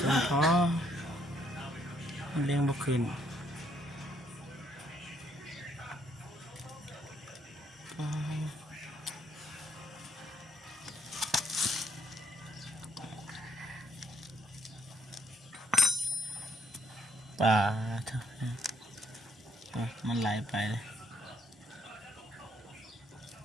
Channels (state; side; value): normal; both; correlation 0.70